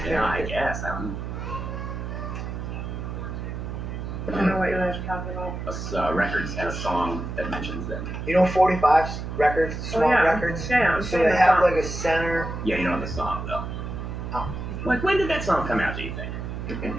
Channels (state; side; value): noise; right; hum, 6 dB below the sound